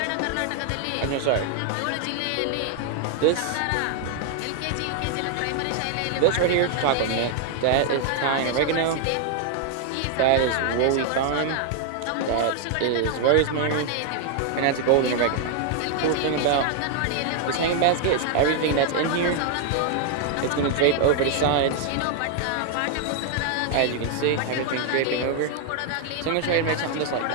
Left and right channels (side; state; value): both; different; correlation 0.00